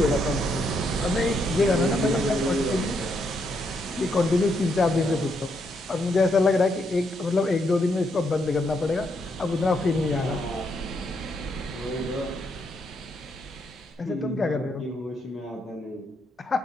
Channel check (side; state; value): both; normal; correlation 0.77